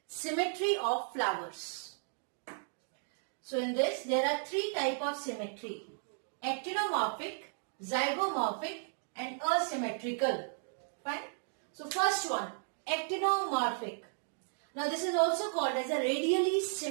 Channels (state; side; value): silent; left; digital silence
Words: symmetry of flowers. So in this there are three types of symmetry: actinomorphic, zygomorphic and asymmetrical. Fine. So first one, actinomorphic. Now this is also called as a radially